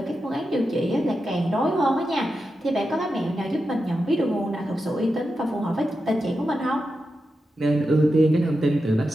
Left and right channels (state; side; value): normal; both; correlation 0.89